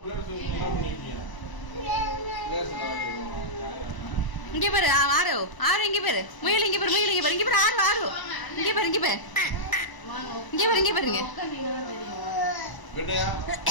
இங்க பாரு ஆறு ஆறு இங்க பாரு முயல் இங்க பாரு முயல் இங்க பாரு இங்க பாரு ஆறு ஆறு இங்க பாரு இங்க பாரு இங்க பாரு இங்க பாருங்க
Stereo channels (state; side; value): late; right; 1.0 ms